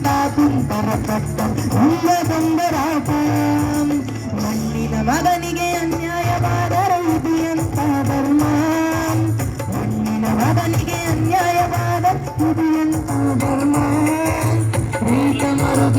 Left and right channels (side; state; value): both; identical; correlation 1.00